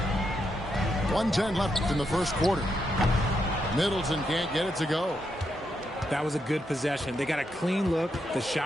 .110 left in the first quarter. Middleton can't get it to go. That was a good possession. They got a clean look. The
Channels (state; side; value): normal; both; correlation 0.81